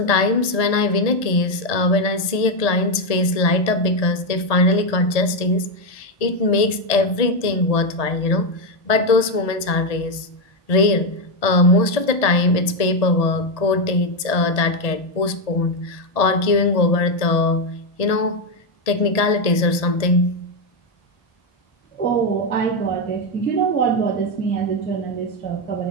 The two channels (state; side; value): late; right; 1.7 ms